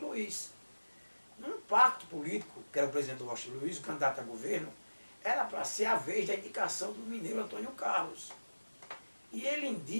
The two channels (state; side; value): inverted; both; correlation -1.00